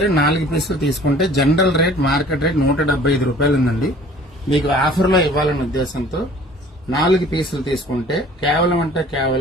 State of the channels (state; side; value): normal; both; correlation 0.50